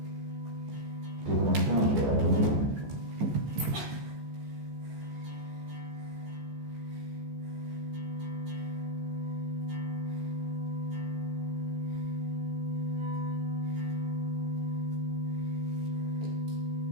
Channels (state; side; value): late; left; 14 ms